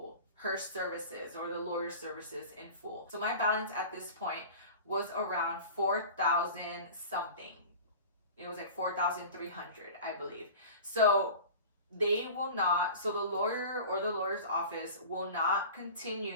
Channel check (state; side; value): inverted; both; correlation -0.37